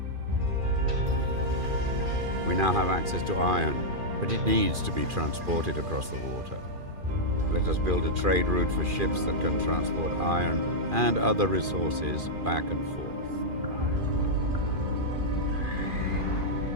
We now have access to iron, but it needs to be transported across the water. Let us build a trade route for ships that can transport iron and other resources back and forth.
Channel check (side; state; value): left; late; 2.4 ms